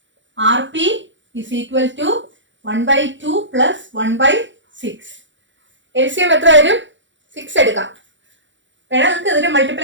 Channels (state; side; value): late; left; 0.54 ms